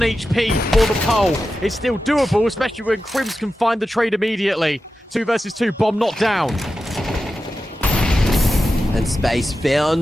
HP for the pole. It's still doable, especially when Crims can find the trade immediately. 2 versus 2. Bomb not down. And space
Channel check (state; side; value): normal; both; correlation 0.92